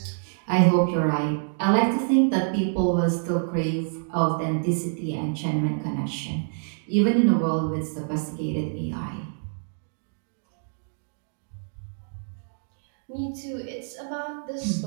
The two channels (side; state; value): left; silent; digital silence